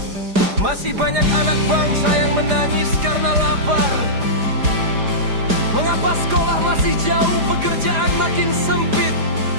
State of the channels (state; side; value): late; left; 4.9 ms